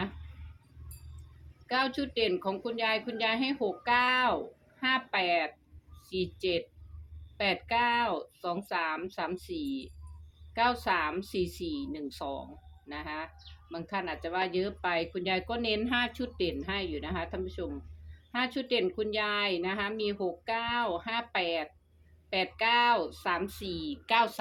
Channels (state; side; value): identical; both; correlation 1.00